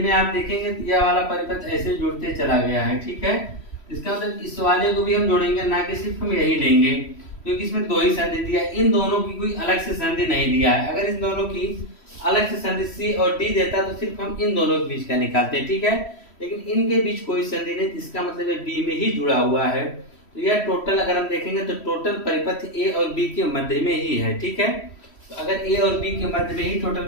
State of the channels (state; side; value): late; right; 3.1 ms